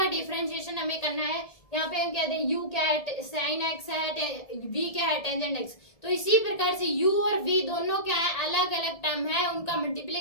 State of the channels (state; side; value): late; right; 1.7 ms